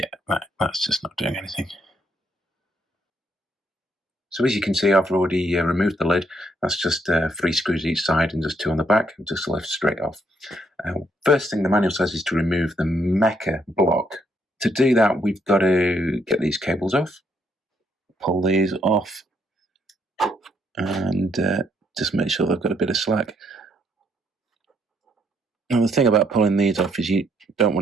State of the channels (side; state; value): both; normal; correlation 0.72